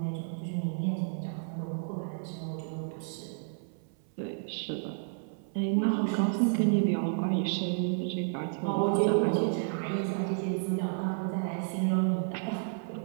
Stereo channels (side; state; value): left; silent; 57 dB below the other